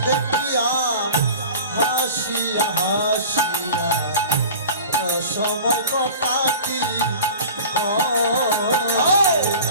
দেখিয়া হাসিয়া হাসিয়া সময় কটাটি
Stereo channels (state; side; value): inverted; both; correlation -0.37